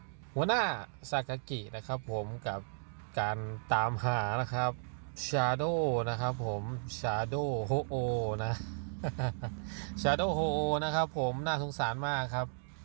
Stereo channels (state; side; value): silent; left; digital silence